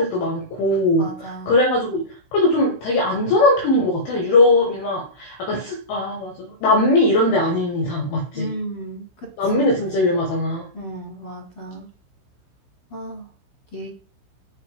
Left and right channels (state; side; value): late; right; 16 ms